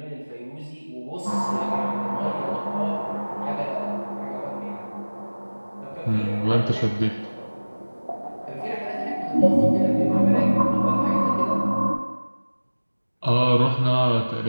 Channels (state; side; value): inverted; both; correlation -1.00